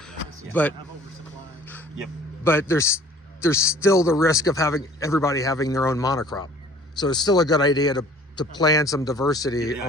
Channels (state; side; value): normal; both; correlation 0.51